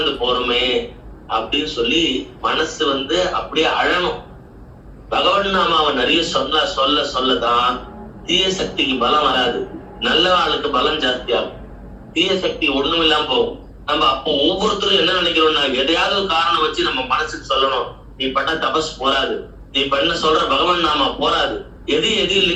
போறோமே அப்படின்னு சொல்லி மனசு அப்படியே அழணும். பகவன் நாமாவை நிறைய சொல்லதான் தீய சக்திக்கு பலம் வராது, நல்ல ஆளுக்கு பலம் ஜாஸ்தியாகும். தீய சக்தி ஒண்ணும் இல்லாம போகும். நம்ம அப்போ ஒவ்வொருத்தரும் என்ன நினைக்கிறோம்னா, எதையாவது ஒரு காரணம் வச்சு நம்ம மனசுக்கு சொல்லணும், நீ பண்ண தபஸ் போராது, நீ பண்ண சொல்ற பகவன் நாமா போராது, எதையும்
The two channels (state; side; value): identical; both; correlation 1.00